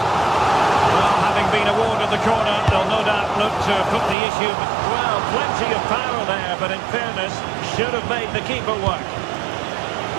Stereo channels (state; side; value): drops out; left; at 4.2 s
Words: having been awarded the corner, they'll no doubt look to put the issue. Well, plenty of power there, but in fairness, should have made the keeper work.